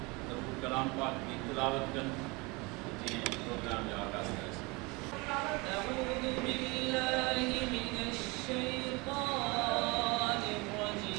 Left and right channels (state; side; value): quieter; left; 26.2 dB